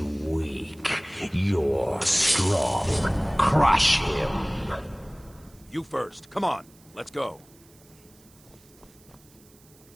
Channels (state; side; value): noise; right; hiss, 27 dB below the sound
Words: You're strong. Crush him. You first. Come on. Let's go.